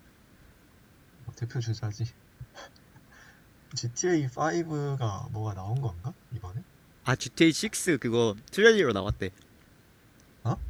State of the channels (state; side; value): identical; both; correlation 1.00